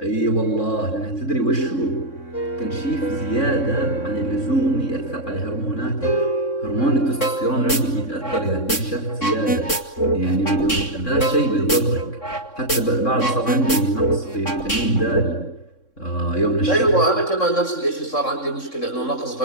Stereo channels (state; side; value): late; right; 3.6 ms